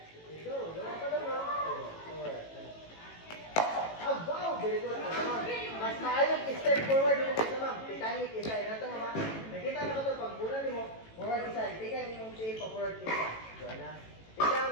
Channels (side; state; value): right; late; 18 ms